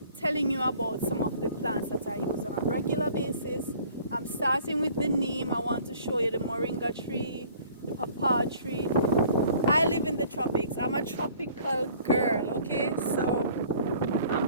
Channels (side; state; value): both; inverted; correlation -0.53